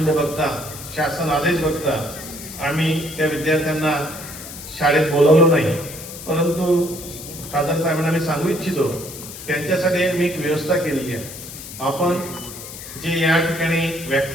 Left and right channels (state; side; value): noise; left; hiss, 12 dB below the sound